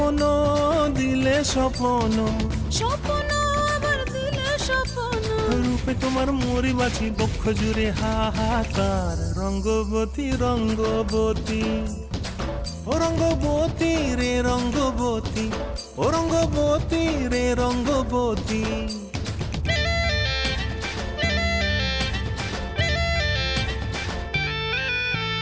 দিলে স্বপ্ন, স্বপ্ন আবার দিলে স্বপ্ন, রূপে তোমার মরি বাছি বক্ষ জুড়ে হাহাকার। রঙ্গবতী রঙ্গবতী, ও রঙ্গবতী রে রঙ্গবতী, ও রঙ্গবতী রে রঙ্গবতী।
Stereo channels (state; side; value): identical; both; correlation 1.00